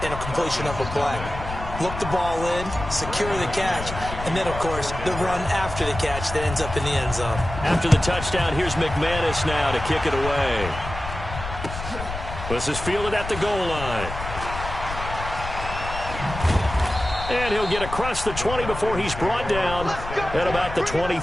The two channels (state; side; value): noise; left; rumble, 8 dB below the sound